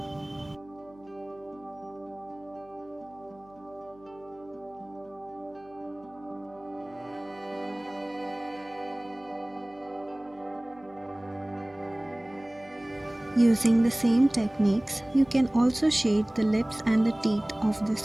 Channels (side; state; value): left; noise; hum, 26 dB below the sound